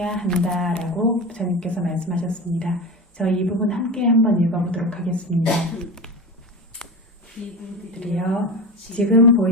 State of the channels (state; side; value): normal; both; correlation 0.25